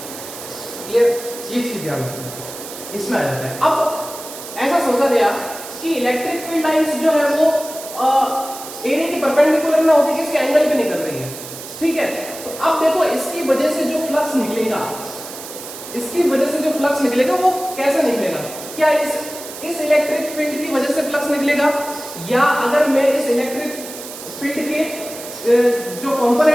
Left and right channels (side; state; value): right; noise; hiss, 12 dB below the sound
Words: क्लियर, ये चीज ध्यान रखना, इसमें आ जाता है। अब ऐसा सोचा गया कि इलेक्ट्रिक फील्ड लाइंस जो है वो एरिया की परपेंडिकुलर ना होकर किसी एंगल पे निकल रही है, ठीक है। तो अब देखो इसकी वजह से जो फ्लक्स निकलेगा, इसकी वजह से जो फ्लक्स निकलेगा वो कैसे निकलेगा, क्या इस इलेक्ट्रिक फील्ड की वजह से फ्लक्स निकलेगा, या अगर मैं इस इलेक्ट्रिक फील्ड के जो